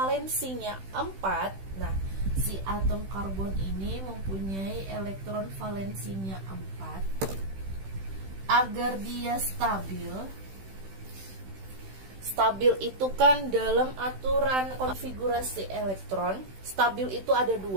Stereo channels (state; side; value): late; left; 16 ms